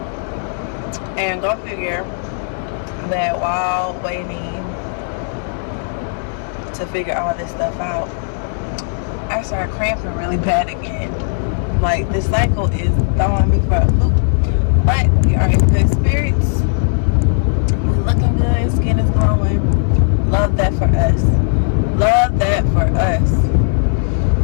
and go figure that while waiting to figure all this stuff out, I started cramping really bad again. Like, this cycle is throwing me for a loop. But we are in good spirits. We're looking good. Skin is glowing. Love that for us. Love that for us.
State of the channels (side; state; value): right; silent; digital silence